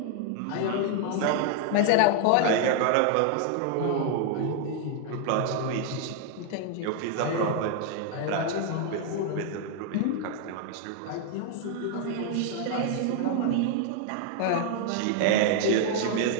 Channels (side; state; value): both; different; correlation 0.00